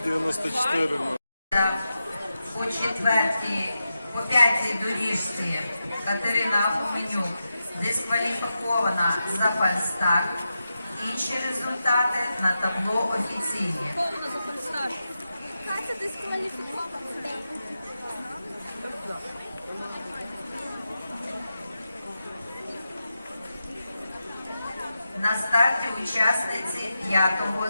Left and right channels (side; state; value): both; inverted; correlation -0.89